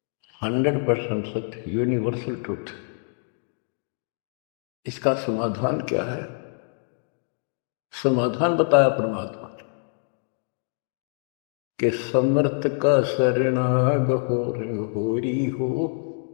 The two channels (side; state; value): right; silent; 59 dB below the other